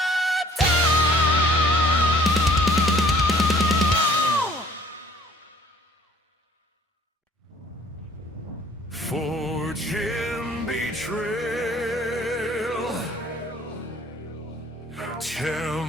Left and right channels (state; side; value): normal; both; correlation 0.55